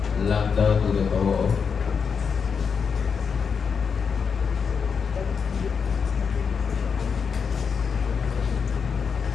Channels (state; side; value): quieter; right; 6.1 dB